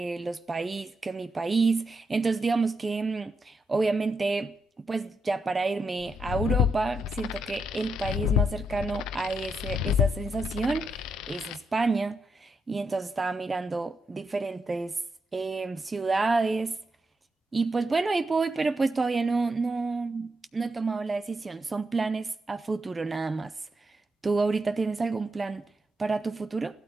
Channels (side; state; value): both; normal; correlation 0.82